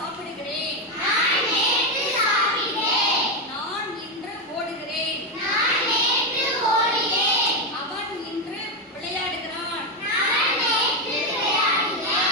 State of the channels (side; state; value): both; normal; correlation 0.09